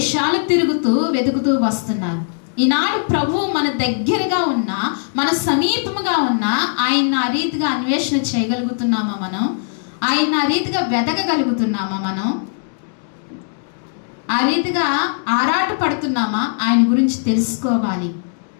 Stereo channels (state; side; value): silent; right; digital silence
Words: తిరుగుతూ వెతుకుతూ వస్తున్నారు. ఈనాడు ప్రభు మన దగ్గరగా ఉన్నా, మన సమీపముగా ఉన్నా, ఆయన ఆ రీతిగా అన్వేషణ చేయగలుగుతున్నామా మనం? ఆయన ఆ రీతిగా వెతకగలుగుతున్నామా మనం? ఆ రీతిగా ఆరాట పడుతున్నామా? ఆయన గురించి తెలుసుకోవాలి,